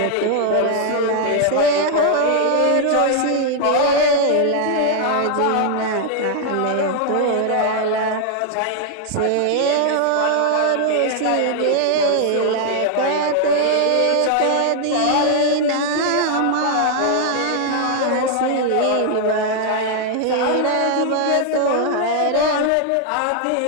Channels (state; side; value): different; both; correlation 0.00